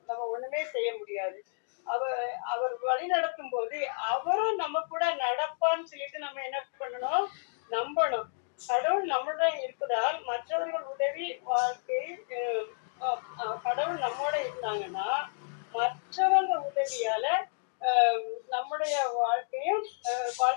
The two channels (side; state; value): right; silent; digital silence